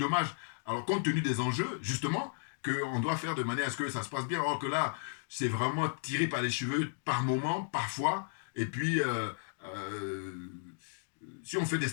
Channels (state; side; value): silent; right; digital silence